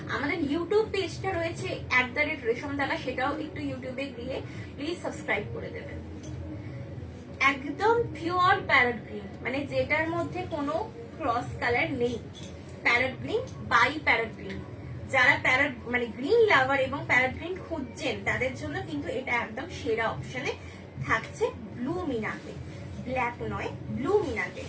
আমাদের ইউটিউব পেজটা রয়েছে @রেশমদালা, সেটাও একটু ইউটিউবে গিয়ে প্লিজ সাবস্ক্রাইব করে দেবেন। একদম পিওর প্যারট গ্রিন, মানে যেটার মধ্যে কোনো ক্রস কালার নেই। Parrot green by parrot green, যারা প্যারট মানে গ্রিন লাভার এবং প্যারট গ্রিন খুঁজছেন তাদের জন্য কিন্তু এটা একদম সেরা অপশনে থাকছে। ব্লু মিনাতে, ব্ল্যাক নয়, ব্লু মিনাতে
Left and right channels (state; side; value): identical; both; correlation 1.00